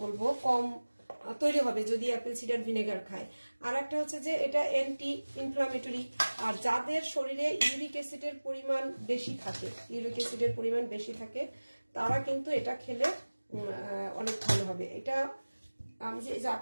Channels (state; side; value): inverted; both; correlation -1.00